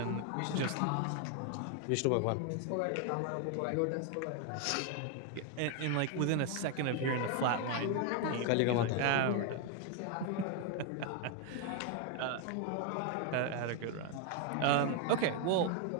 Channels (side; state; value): both; different; correlation 0.01